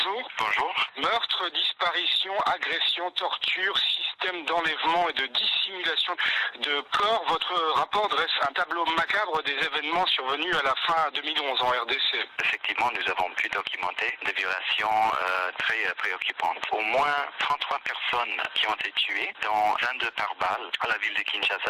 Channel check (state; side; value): identical; both; correlation 1.00